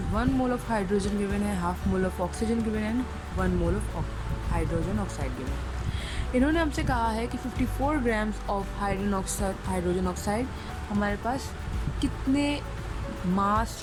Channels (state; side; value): identical; both; correlation 1.00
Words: 1 मोल ऑफ हाइड्रोजन गिवन है, half mole of oxygen given है, 1 mole of hydrogen oxide given है। इन्होंने हमसे कहा है कि 54 ग्राम्स ऑफ हाइड्रोजन ऑक्साइड हमारे पास कितने मास